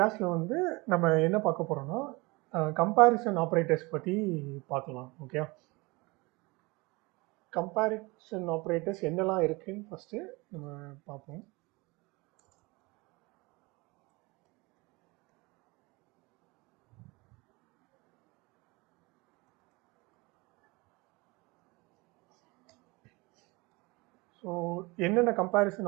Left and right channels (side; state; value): left; quieter; 24.9 dB